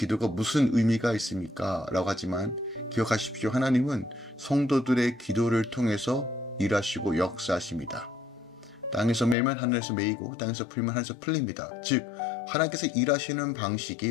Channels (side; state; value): right; drops out; at 9.3 s